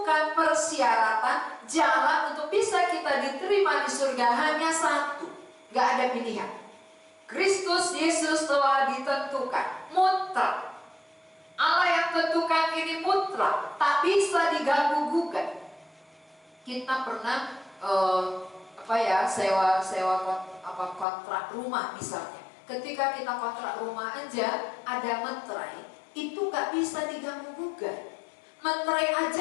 persyaratan jalan untuk bisa kita diterima di surga hanya satu, gak ada pilihan. Kristus Yesus telah ditentukan, mutlak. Allah yang tentukan ini mutlak, tak bisa diganggu-gugat. Kita pernah sewa kontrak rumah misalnya. Ketika kita kontrak rumah aja ada meterai, itu gak bisa diganggu-gugat. Meterai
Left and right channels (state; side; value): drops out; right; at 21.1 s